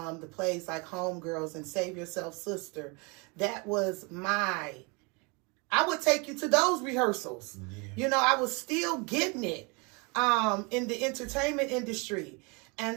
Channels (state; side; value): quieter; left; 30.3 dB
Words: plays like Homegirls and Save Yourself Sister, that was I would take you to those rehearsals. Yeah. I was still getting it in the entertainment industry.